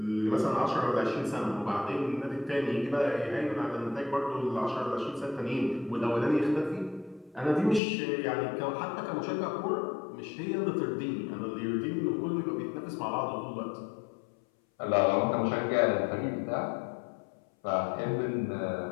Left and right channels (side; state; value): right; drops out; at 7.8 s